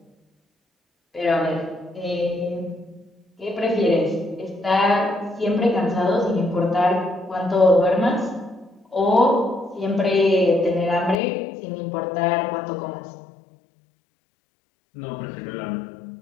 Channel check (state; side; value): drops out; right; at 11.2 s